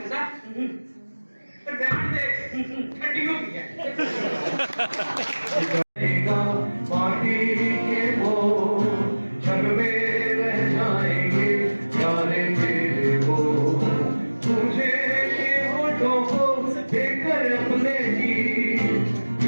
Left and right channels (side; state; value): both; inverted; correlation -1.00